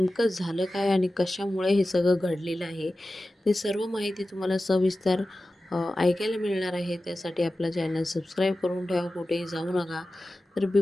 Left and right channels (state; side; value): normal; both; correlation 0.95